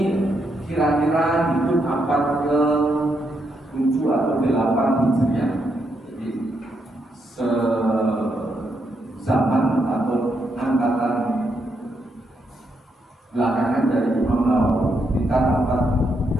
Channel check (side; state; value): both; normal; correlation 0.79